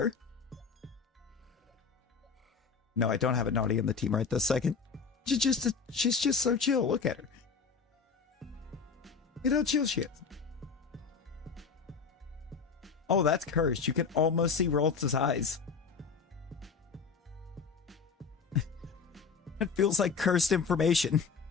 No, I don't have a Naughty on the team right this second. She's just so chill. Look at her. Look at how chill she is. Oh, that's cursed. You can almost see Ralts' eyes. It feels like cursed information.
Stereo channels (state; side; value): quieter; right; 5.4 dB